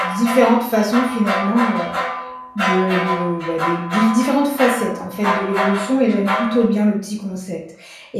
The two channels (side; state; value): both; identical; correlation 1.00